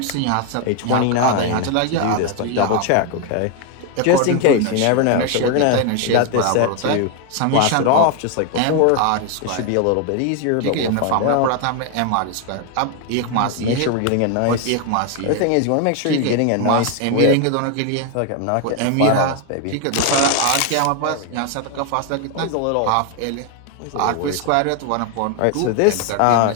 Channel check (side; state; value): both; different; correlation 0.01